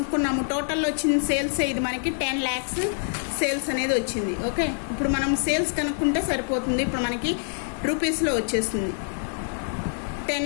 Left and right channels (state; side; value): silent; right; digital silence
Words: టోటల్లో వచ్చింది సేల్స్ ఇది మనకి 10 lakhs సేల్స్ అనేది వచ్చింది. ఓకే, ఇప్పుడు మనం సేల్స్ కనుక్కుంటే సరిపోతుంది. ఇప్పుడు మనకి రూపీస్లో వచ్చేస్తుంది 10